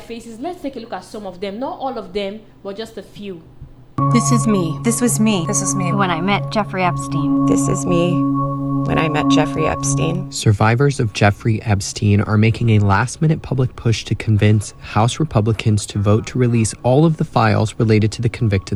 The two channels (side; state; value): both; identical; correlation 1.00